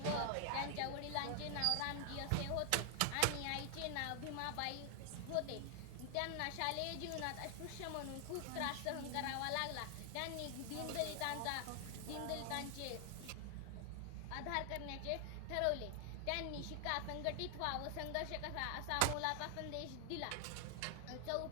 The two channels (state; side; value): different; both; correlation 0.00